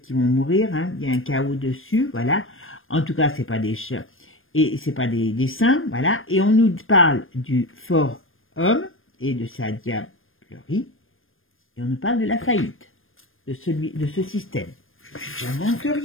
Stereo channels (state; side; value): late; right; 0.59 ms